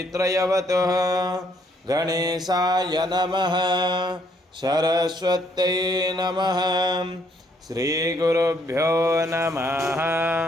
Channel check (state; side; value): normal; both; correlation 0.69